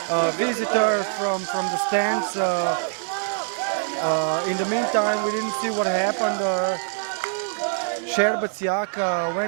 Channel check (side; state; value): left; silent; 59 dB below the other